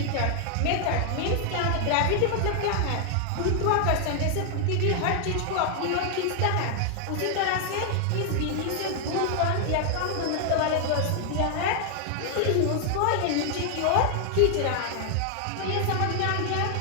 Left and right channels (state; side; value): different; both; correlation 0.00